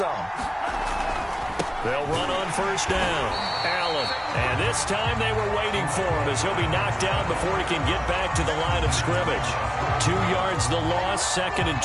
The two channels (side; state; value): both; identical; correlation 1.00